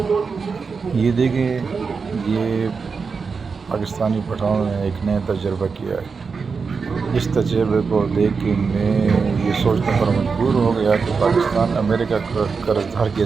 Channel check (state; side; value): quieter; left; 5.1 dB